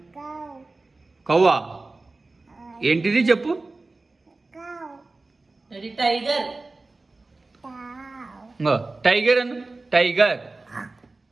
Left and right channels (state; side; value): quieter; left; 3.4 dB